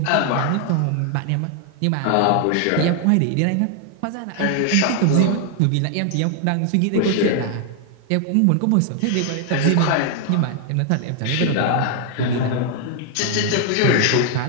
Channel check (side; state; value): both; different; correlation 0.00